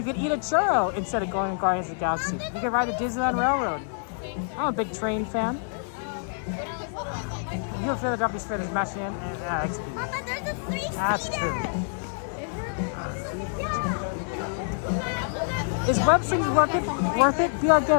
could eat a churro instead of going to Guardians of the Galaxy. You could ride the Disneyland Railroad. I'm a big train fan. You and Philadelphia's fair is mashing in. Papa, there's a 3-seater. That's true. Is web slinging worth it? Be our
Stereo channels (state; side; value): silent; right; digital silence